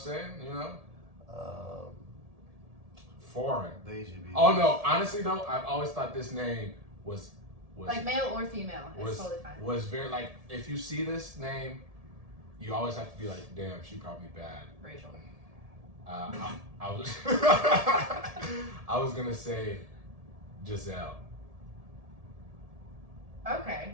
You know? Foreign. Deji B. Oh no, honestly though, I've always thought this name was Like male or female, it's was totally fine. was very like if you see this name, you always have to be like, damn, she probably bad. Rachel. I was I was gonna say Giselle.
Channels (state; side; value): late; left; 1.7 ms